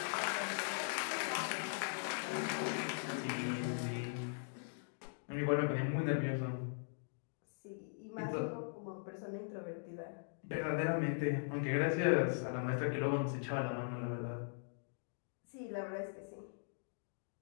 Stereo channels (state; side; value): silent; right; digital silence